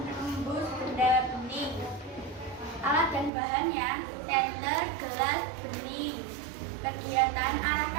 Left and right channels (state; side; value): drops out; left; at 3.3 s